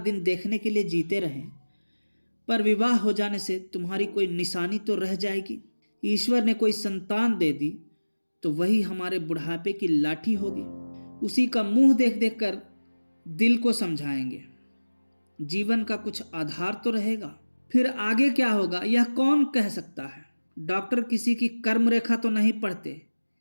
देखने के लिए जीते रहें, पर विवाह हो जाने से तुम्हारी कोई निशानी तो रह जाएगी। ईश्वर ने कोई संतान दे दी तो वही हमारे बुढ़ापे की लाठी होगी। उसी का मुंह देख देख कर दिल को समझाएंगे। जीवन का कुछ आधार तो रहेगा। फिर आगे क्या होगा यह कौन कह सकता है। डॉक्टर किसी की कर्म रेखा तो नहीं पढ़ते।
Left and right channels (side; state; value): both; inverted; correlation -1.00